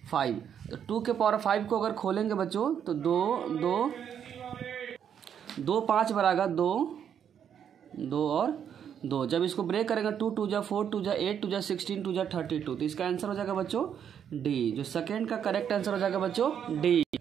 5। तो 2 के पावर 5 को अगर खोलेंगे बच्चों तो 2 5 बराबर 2 और 2। जब इसको ब्रेक करेंगे 2 2 जा 4 2 जा 8 2 जा 16 2 जा 32, तो इसका आंसर हो जाएगा बच्चों डी। जो सेकेंड का करेक्ट आंसर हो जाएगा बच्चों डी।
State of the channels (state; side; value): quieter; left; 8.6 dB